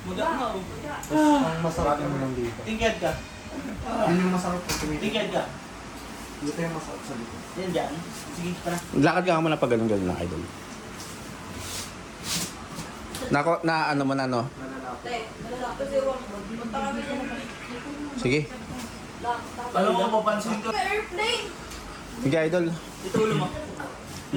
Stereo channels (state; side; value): identical; both; correlation 1.00